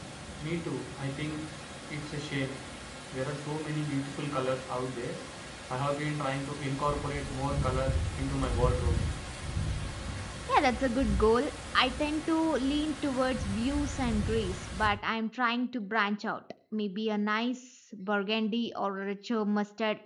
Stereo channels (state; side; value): identical; both; correlation 1.00